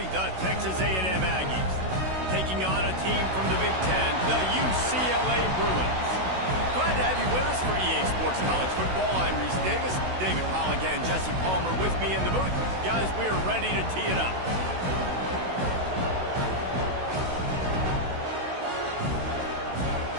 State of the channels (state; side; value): late; left; 16 ms